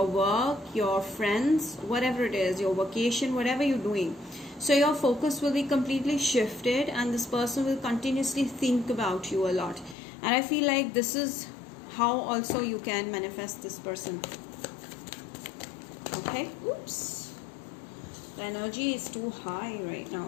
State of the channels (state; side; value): drops out; right; at 10.0 s